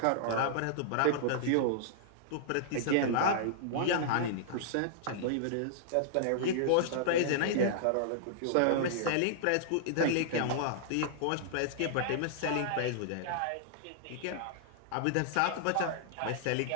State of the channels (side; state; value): both; different; correlation -0.01